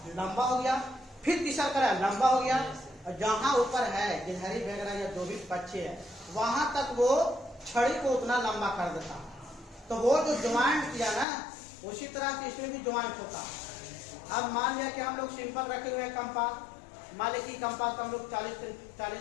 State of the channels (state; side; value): drops out; right; at 11.2 s